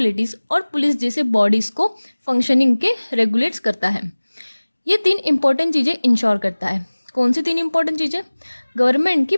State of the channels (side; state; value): both; inverted; correlation -1.00